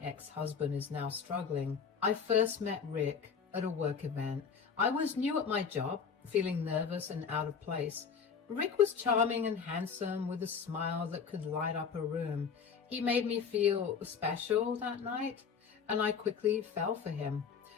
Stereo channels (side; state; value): right; quieter; 6.3 dB